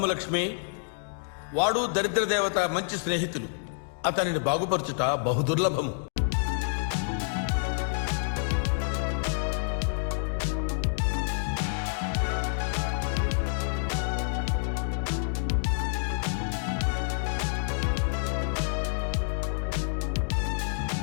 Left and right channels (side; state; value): right; silent; digital silence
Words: లక్ష్మి, వాడు దరిద్ర దేవత మంచి స్నేహితులు. అతనిని బాగుపరచుట బహుదుర్లభము.